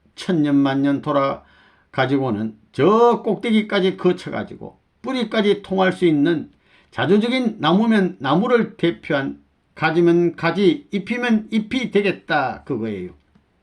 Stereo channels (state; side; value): identical; both; correlation 1.00